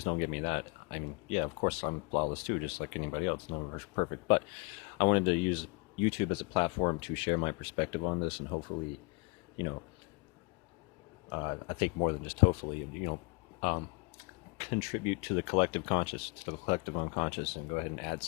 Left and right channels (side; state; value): right; quieter; 29.8 dB